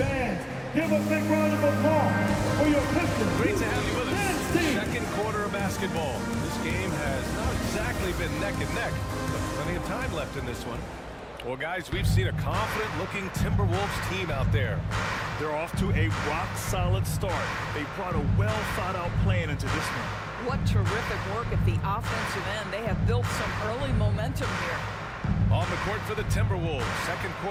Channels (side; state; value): both; identical; correlation 1.00